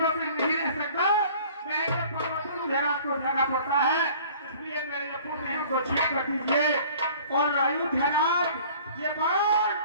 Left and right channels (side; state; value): both; inverted; correlation -0.49